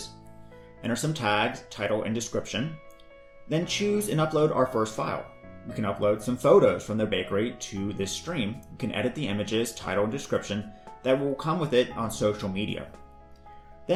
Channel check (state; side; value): identical; both; correlation 1.00